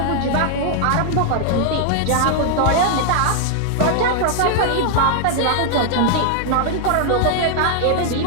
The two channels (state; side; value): different; both; correlation 0.00